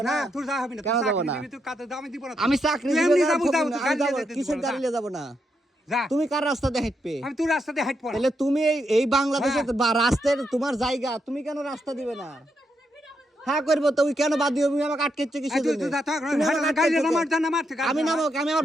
না তোর যা হবে না কেন যাব না তুই কাতে দাও আমি দিব না আমি চাকরি দিব এমনি না যাবো, যাবো, আমি যাব গাড়ি কিসের গাড়ি নিয়ে যাব না যা তুমি কার রাস্তা দিয়ে হাঁটবে আমি তোর রাস্তা দিয়ে হাঁট পড়া তাহলে তুমি এই বাংলাদেশে রাস্তার তোমার জায়গা তুমি কেন রাস্তা দিবে না হ্যাঁ করবো তো ওই কেন বাদ দিও তুমি আমাকে আটকেছো কিসের জন্য তুমি আমাকে আটকেছো কেন? আমি নামো আমি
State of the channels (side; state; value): both; normal; correlation 0.81